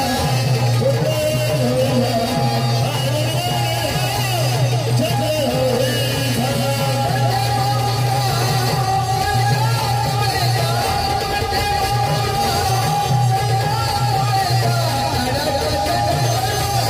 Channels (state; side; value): noise; right; hum, 24 dB below the sound